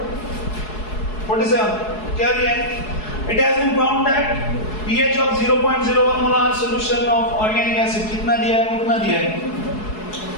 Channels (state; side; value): late; right; 4.7 ms